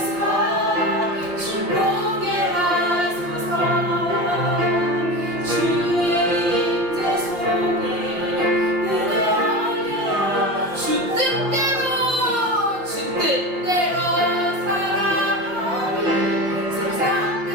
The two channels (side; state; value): left; late; 5.7 ms